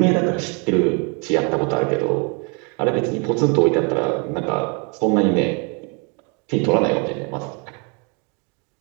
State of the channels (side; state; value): left; quieter; 34.4 dB